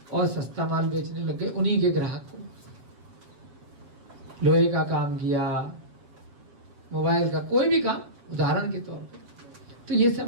और सस्ता माल बेचने लग गए उन्हीं के ग्राहक को। लोहे का काम किया, मोबाइल का कोई भी काम उदाहरण के तौर पर, तो ये सब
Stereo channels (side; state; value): left; late; 7.9 ms